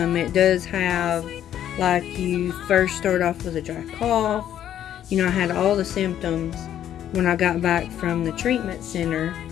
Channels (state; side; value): quieter; right; 10.8 dB